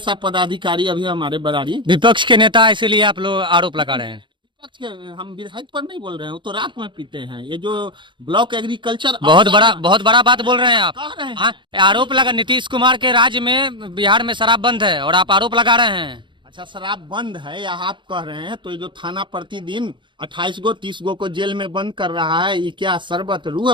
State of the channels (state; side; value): late; left; 0.23 ms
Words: पदाधिकारी अभी हमारे बरारी विपक्ष के नेता, इसीलिए आप लोग आरोप लगा रहे हैं। विपक्ष के, हम विधायक पर नहीं बोल रहे हैं, वो तो रात में पीते हैं। ये जो ब्लॉक एग्रीकल्चर बहुत बड़ा बात बोल रहे हैं आप। कह रहे हैं। हाँ, आरोप लगा नीतीश कुमार के राज्य में बिहार में शराब बंद है और आप आरोप लगा रहे हैं। अच्छा, शराब बंद है या आप कह रहे हैं? तो ये जो थाना प्रतिदिन 28 गो 30 गो को जेल में बंद कर रहा है, ये क्या शरबत रूह